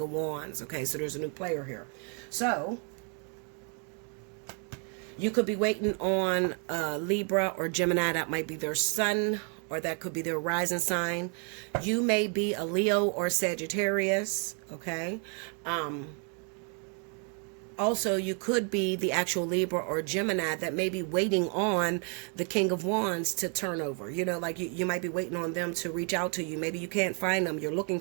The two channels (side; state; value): left; quieter; 39.0 dB